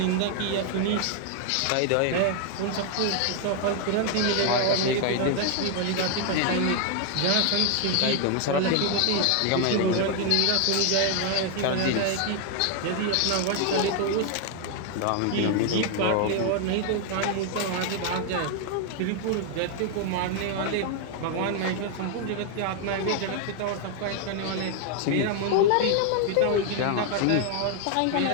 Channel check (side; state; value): both; different; correlation 0.00